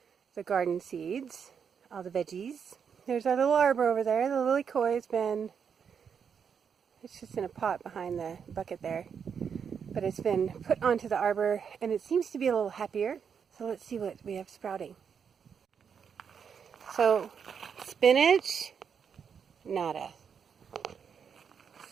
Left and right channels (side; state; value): left; quieter; 7.0 dB